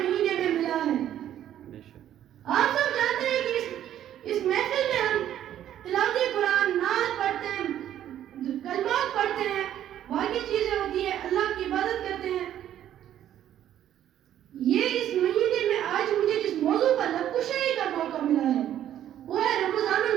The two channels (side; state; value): left; quieter; 11.2 dB